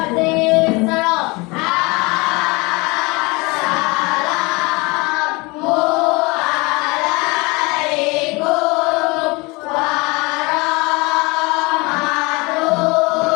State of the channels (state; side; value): quieter; right; 25.8 dB